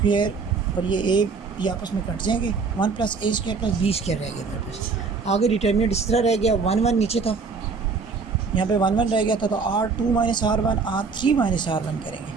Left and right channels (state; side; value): quieter; left; 4.8 dB